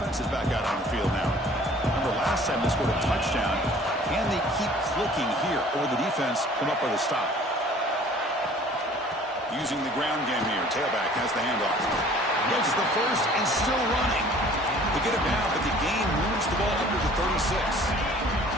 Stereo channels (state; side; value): normal; both; correlation 0.51